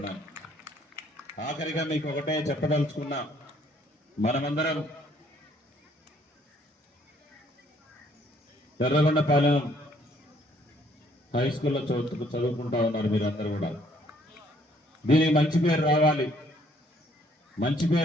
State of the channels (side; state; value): both; normal; correlation 0.64